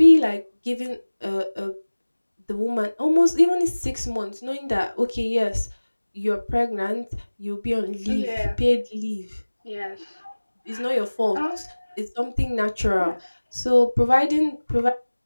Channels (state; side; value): inverted; both; correlation -1.00